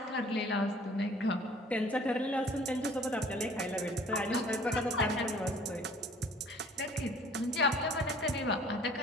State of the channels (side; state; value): both; normal; correlation 0.53